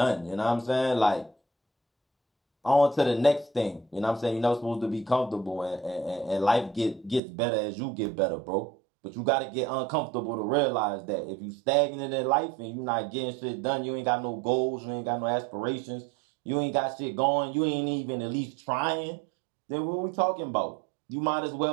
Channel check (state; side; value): drops out; left; at 7.2 s